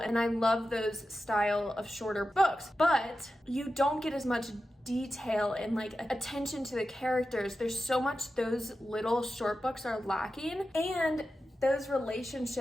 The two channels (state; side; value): normal; both; correlation 0.92